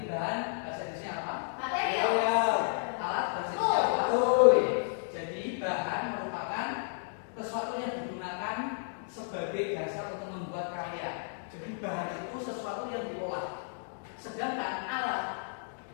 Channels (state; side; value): silent; right; digital silence